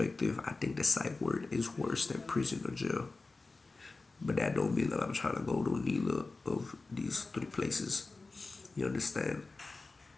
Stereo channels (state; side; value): quieter; right; 3.6 dB